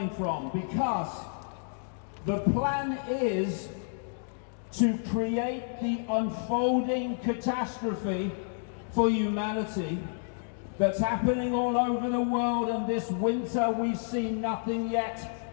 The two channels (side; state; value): right; silent; digital silence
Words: from, because the plan is to create the unfolding catastrophe for humanity that's happening all over the world. And this winter we've seen nothing